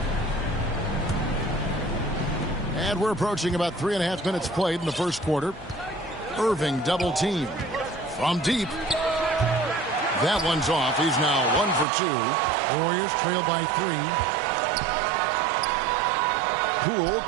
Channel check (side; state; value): left; drops out; at 11.9 s